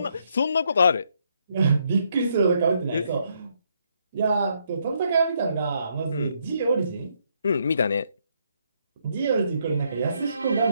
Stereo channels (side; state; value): both; inverted; correlation -0.74